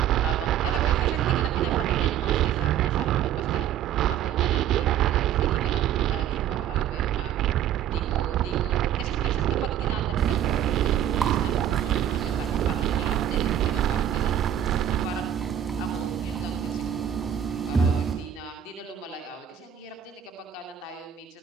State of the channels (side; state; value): left; quieter; 10.0 dB